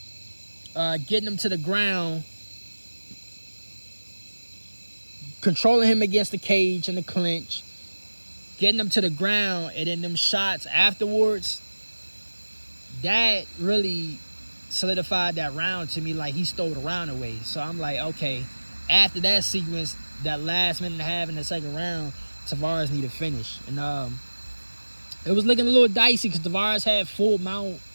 getting him to the ground, controlling him against the cage and the clinch, getting him to the ground, and then them shots afterwards, that really solidified that round to me. Like, he stole the round away. So I'm like, okay, after that sequence, that last minute and a half in the second round, Tavares need to finish. And it was looking a little dicey because Tavares had full mount.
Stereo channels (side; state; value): both; inverted; correlation -1.00